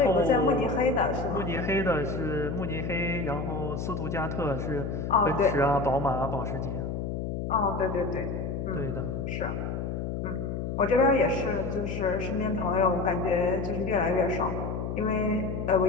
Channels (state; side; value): noise; left; hum, 3 dB below the sound